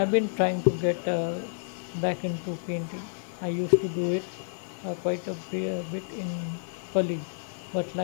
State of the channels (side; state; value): right; silent; 58 dB below the other